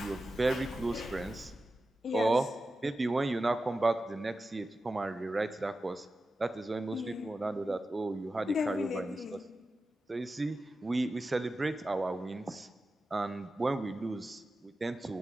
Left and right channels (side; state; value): both; normal; correlation 0.93